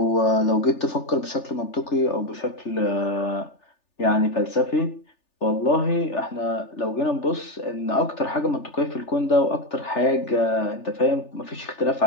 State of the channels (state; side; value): late; right; 3.4 ms